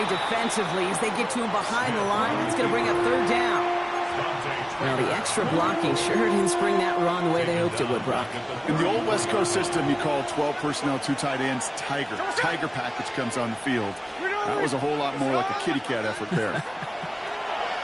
defensively as they get to him behind the line. That's going to bring up 3rd down. Well, the extra blocking sure didn't spring that run the way they hoped it would, Brock. In the old West Coast system, you call 12 personnel, 2 tight ends, Tiger. Tiger package comes on the field. That was a whole lot more like a kitty cat effort there. And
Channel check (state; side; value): identical; both; correlation 1.00